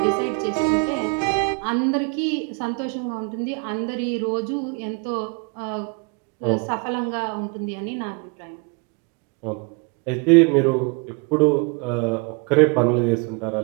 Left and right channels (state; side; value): quieter; left; 32.7 dB